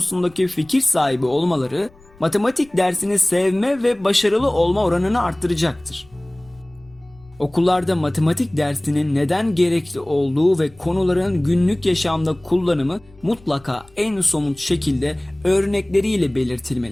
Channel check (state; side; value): noise; left; rumble, 27 dB below the sound